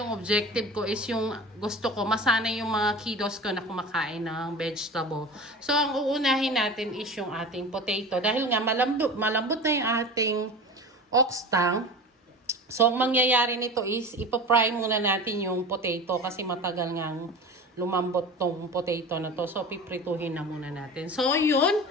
objective ko is yung gusto ko masanay yung mga kiddos ko na kumakain ng vegetable. So ang uunahin natin is yung ating potato. Dahil nga malambot na yung ating ox tongue. So, ang mangyayari nito is, ipapry muna natin yung potato kasi matagal ngang lumambot tong potato na to. So, piprituhin na muna natin. So, yun.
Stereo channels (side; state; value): both; normal; correlation 0.33